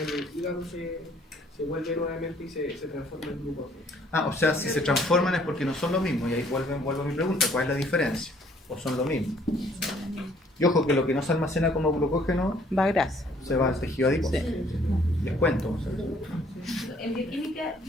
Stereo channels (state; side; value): normal; both; correlation 0.61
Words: el hígado se vuelve nuevamente y se transforma en glucógeno. O sea, si se transforman es porque no son lo mismo. Y ahí vuelvo a mi pregunta, ¿cuál es la diferencia? ¿O son lo mismo? Y ojo que lo que no se almacena como glucógeno va a grasa. Se va al tejido adiposo. Les cuento. O sea. En bioquímica